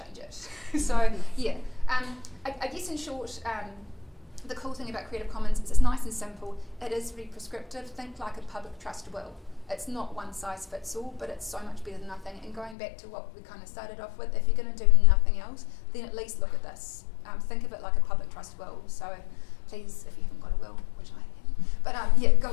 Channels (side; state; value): right; drops out; at 12.8 s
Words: it. So, yeah. I guess in short, the cool thing about Creative Commons is it's nice and simple. It is very prescriptive. Think like a public trust will. It's not one size fits all, but it's so much better than nothing. And going back to what we kind of started off with, if you're going to do nothing else, then at least look at this. Think of it like a public trust will. So please, if you haven't got a will, which I haven't, but